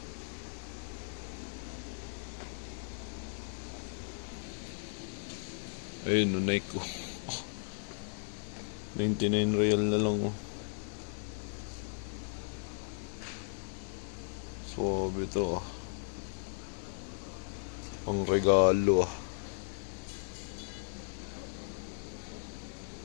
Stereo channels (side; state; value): right; silent; 54 dB below the other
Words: Ayun, no, Nike ko. 99 real na lang oh. Suwabe to ah. Pang regalo ah.